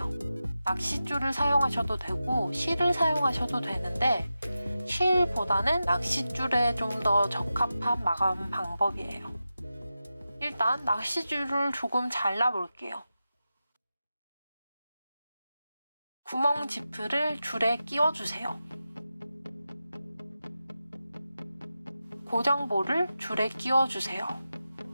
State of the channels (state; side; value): inverted; both; correlation -0.92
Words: 낚싯줄을 사용하셔도 되고 실을 사용하셔도 되는데 실보다는 낚싯줄에 좀 더 적합한 마감 방법이에요. 일단 낚싯줄을 조금 잘라볼게요. 구멍 지프를 줄에 끼워주세요. 고정볼을 줄에 끼워주세요.